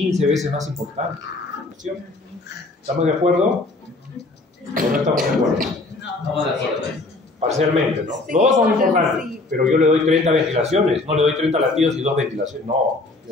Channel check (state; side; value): quieter; right; 3.1 dB